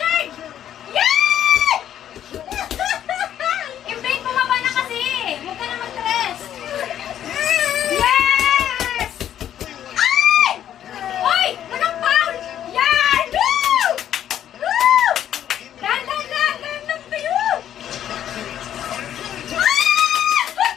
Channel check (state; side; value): quieter; right; 10.6 dB